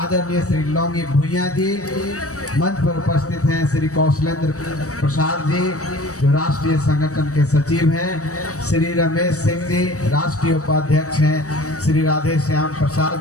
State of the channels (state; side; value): late; right; 0.65 ms